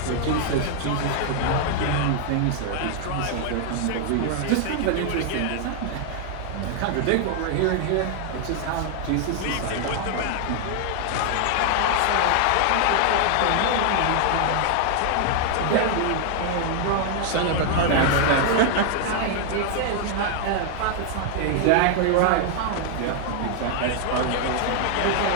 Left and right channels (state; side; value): different; both; correlation 0.00